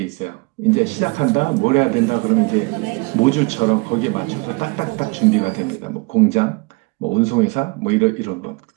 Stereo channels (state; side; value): quieter; left; 28.7 dB